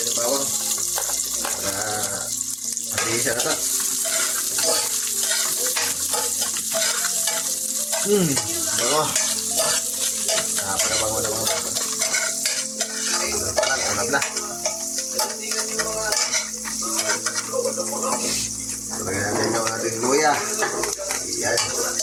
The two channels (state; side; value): identical; both; correlation 1.00